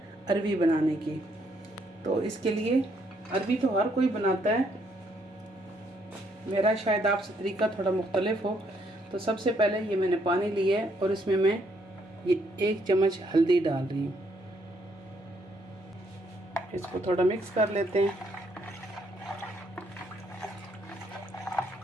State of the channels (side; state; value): both; normal; correlation 0.71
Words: अरवी बनाने की। तो इसके लिए अरवी तो हर कोई बनाता है, मेरा शायद आपसे तरीका थोड़ा मुख्तलिफ हो। तो सबसे पहले ये मैंने पानी लिया है और इसमें मैं ये 1 चम्मच हल्दी डाल रही हूँ। इसको थोड़ा मिक्स कर लेते हैं।